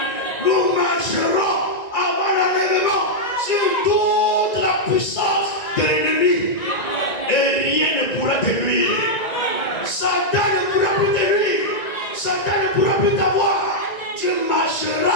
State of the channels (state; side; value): late; right; 1.9 ms